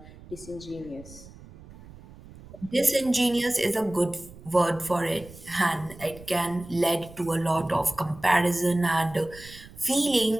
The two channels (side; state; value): right; noise; rumble, 19 dB below the sound